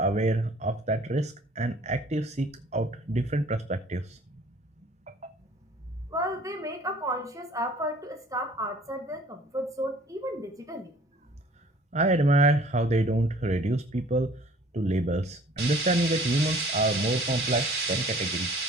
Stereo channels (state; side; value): normal; both; correlation 0.52